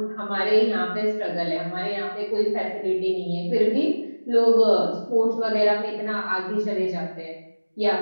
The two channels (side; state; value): both; inverted; correlation -1.00